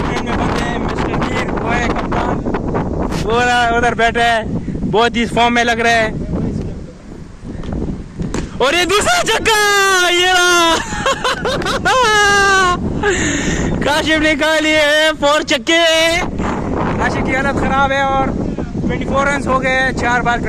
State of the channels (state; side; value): identical; both; correlation 1.00